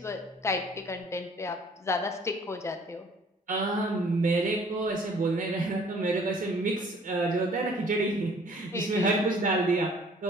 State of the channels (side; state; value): both; normal; correlation 0.56